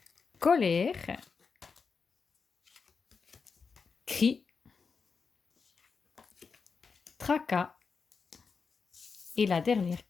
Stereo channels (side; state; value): right; quieter; 5.2 dB